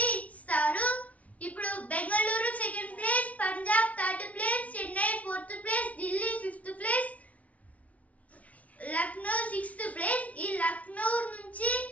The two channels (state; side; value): late; right; 0.068 ms